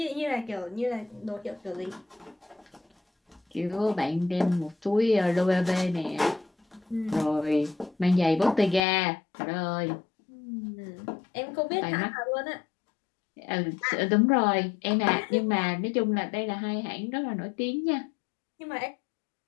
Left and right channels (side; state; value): right; drops out; at 8.8 s